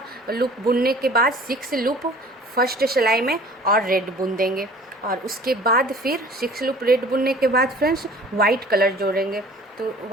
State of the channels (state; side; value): normal; both; correlation 0.48